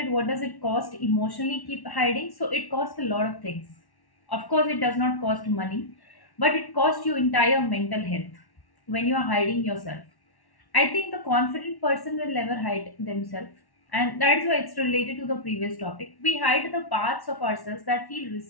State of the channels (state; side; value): late; right; 1.1 ms